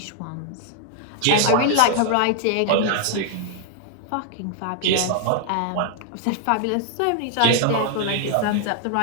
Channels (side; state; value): both; different; correlation 0.00